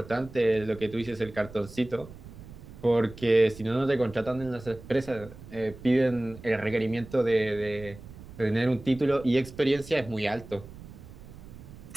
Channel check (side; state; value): right; noise; rumble, 16 dB below the sound